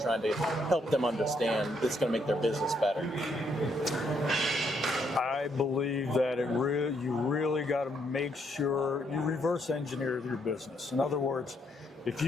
to help them understand that's going to make their business better? I believe that you really got to make sure you reverse engineer your business. In other words, if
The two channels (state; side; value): normal; both; correlation 0.74